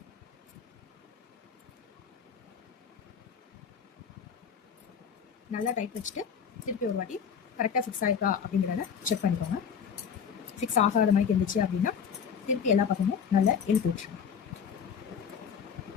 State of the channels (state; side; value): quieter; right; 7.1 dB